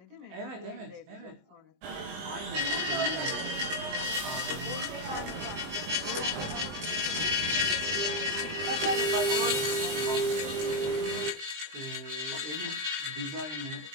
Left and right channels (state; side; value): late; left; 20 ms